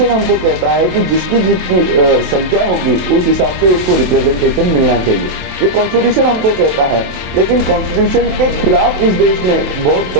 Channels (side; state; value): left; late; 27 ms